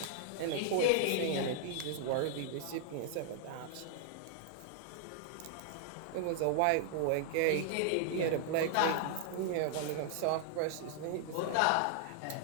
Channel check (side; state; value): both; different; correlation 0.00